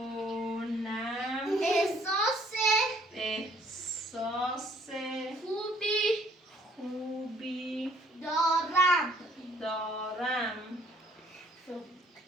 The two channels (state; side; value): normal; both; correlation 0.61